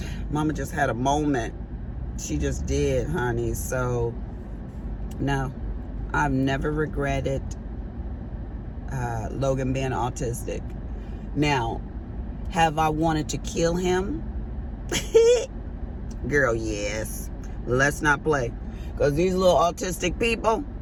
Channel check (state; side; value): identical; both; correlation 1.00